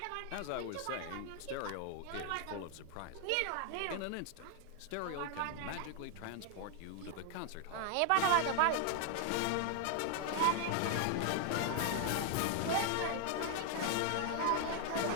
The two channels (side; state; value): both; different; correlation 0.00